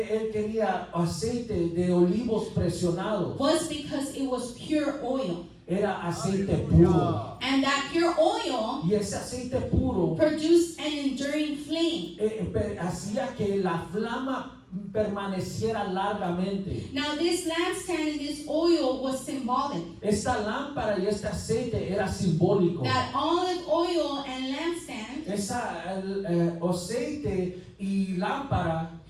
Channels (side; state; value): both; identical; correlation 1.00